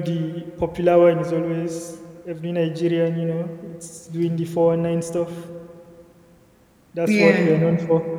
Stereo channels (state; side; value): identical; both; correlation 1.00